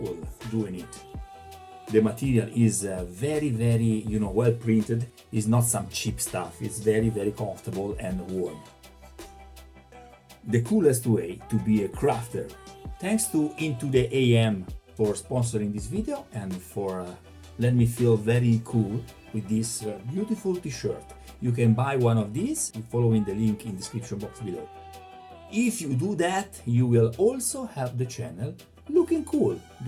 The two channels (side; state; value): both; identical; correlation 1.00